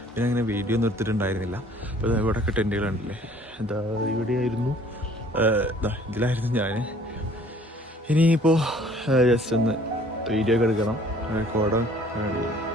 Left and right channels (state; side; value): normal; both; correlation 0.55